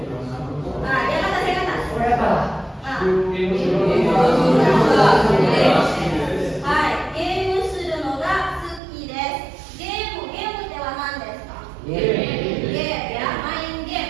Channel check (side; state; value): left; drops out; at 8.8 s